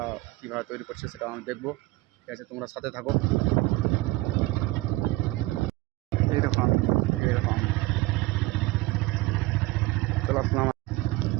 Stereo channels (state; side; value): quieter; left; 20.8 dB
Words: কীভাবে তৈরি করছে সেটা আমি দেখবো, ঠিক আছে। তোমরা সাথে থাকো। এই দেখো আমি, এই দেখো আমি চলে আসলাম।